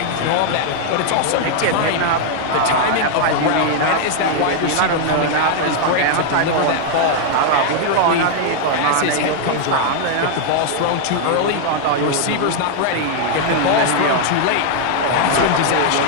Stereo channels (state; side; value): different; both; correlation 0.00